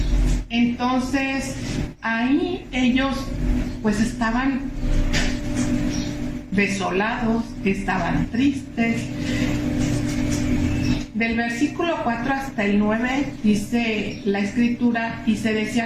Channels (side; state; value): both; identical; correlation 1.00